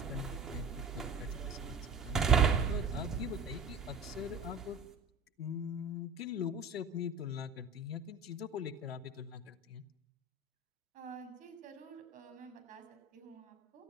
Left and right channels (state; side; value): quieter; left; 3.5 dB